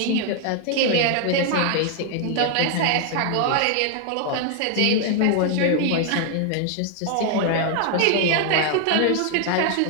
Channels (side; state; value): both; different; correlation 0.00